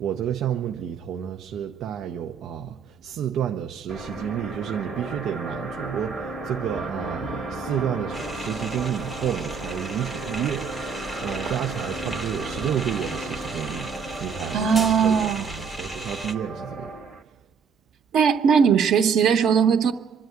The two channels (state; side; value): quieter; left; 6.4 dB